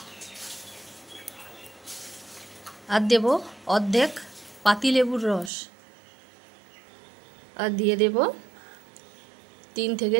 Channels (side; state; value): left; drops out; at 5.5 s